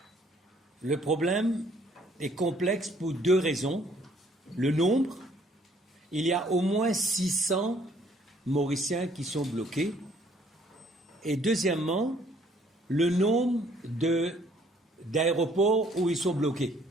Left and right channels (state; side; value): normal; both; correlation 0.62